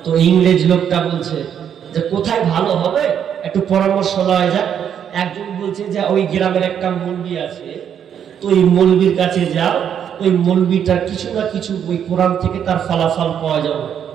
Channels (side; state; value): left; quieter; 8.7 dB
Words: তো ইংরেজ লোকটা বলছে যে কোথায় ভালো হবে, একটু পরামর্শ লওয়া যাক। একজন বলছে যে ওই গ্রামের একটা মৌলবি আছে, তো ওই মৌলবির কাছে যাও, ওই মৌলবিটার কিছু না কিছু ওই কোরআন থেকে তার ফলাফল পাওয়া যাবে।